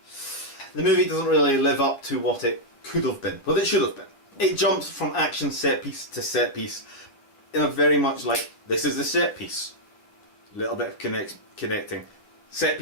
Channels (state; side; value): late; right; 9.8 ms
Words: The movie doesn't really live up to what it could have been, what it should have been. It jumps from action set piece to set piece in a very much like, this is the set piece. A little bit of connecting. Set